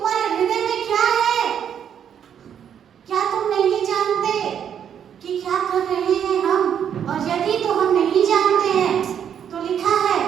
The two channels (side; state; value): left; quieter; 8.7 dB